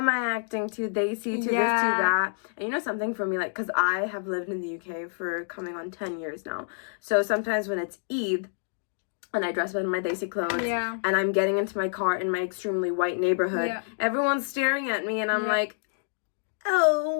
I acting too desi, too this, too that? And you know something for me, like, because I have lived in the UK for coming on 10 years now. So sometimes when it's Eid, and I dress up in my desi clothes, and I'm getting into my car in my extremely white neighborhood, everyone's staring at me, and I'm like,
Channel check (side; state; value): right; silent; digital silence